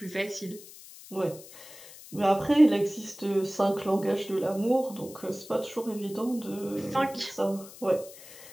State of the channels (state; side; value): noise; left; hiss, 18 dB below the sound